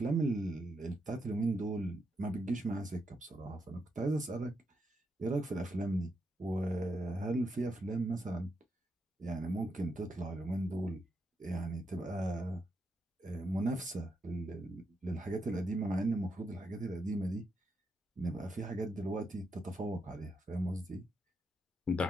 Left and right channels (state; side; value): normal; both; correlation 0.82